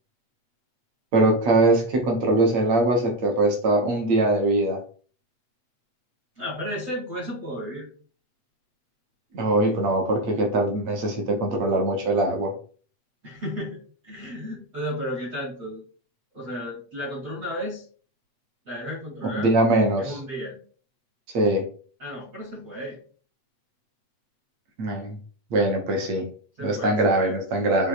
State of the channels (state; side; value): late; left; 8.5 ms